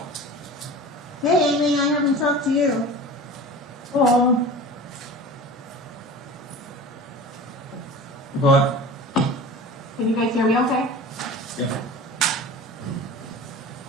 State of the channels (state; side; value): normal; both; correlation 0.36